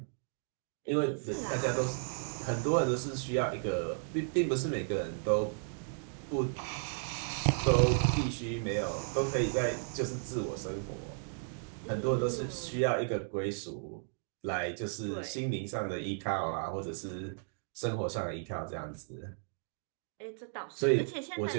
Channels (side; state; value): left; silent; digital silence